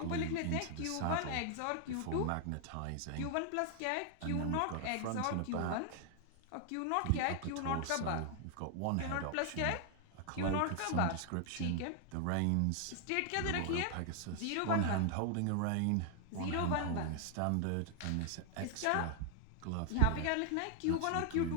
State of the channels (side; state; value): both; different; correlation 0.00